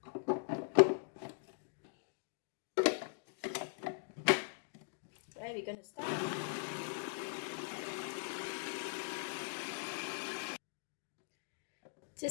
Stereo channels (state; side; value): silent; right; digital silence